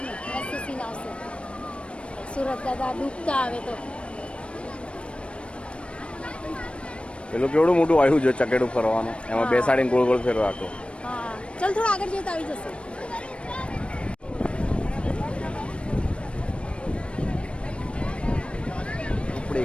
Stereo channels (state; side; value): late; right; 0.059 ms